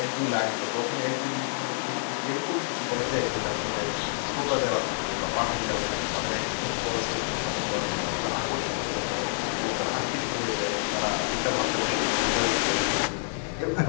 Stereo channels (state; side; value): silent; right; digital silence